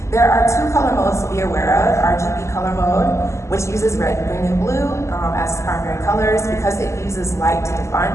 There are two color modes to be aware of: RGB color mode, which uses red, green, and blue as primary colors because it uses light to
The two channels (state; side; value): late; right; 0.13 ms